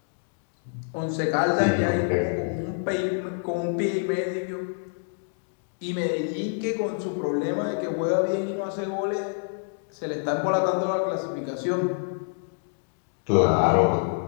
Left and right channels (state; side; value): silent; right; digital silence